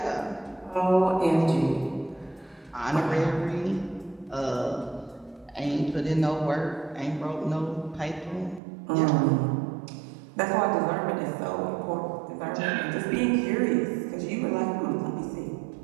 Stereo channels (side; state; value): left; drops out; at 8.6 s